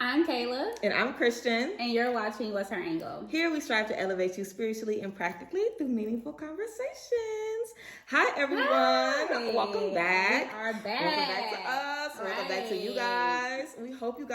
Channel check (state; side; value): identical; both; correlation 1.00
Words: I'm Kayla. And I'm Christian. And you're watching What's Her Angle? Here we strive to elevate you spiritually and practically through meaningful conversations. Hi, everyone. Hi. Welcome back. We are back. Welcome back to us. Right. Welcome back to you guys. We hope you